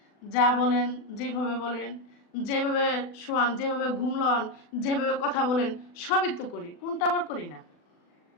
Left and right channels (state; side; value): late; right; 40 ms